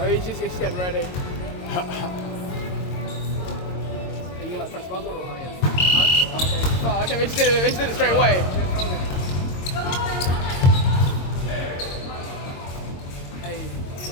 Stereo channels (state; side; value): late; right; 22 ms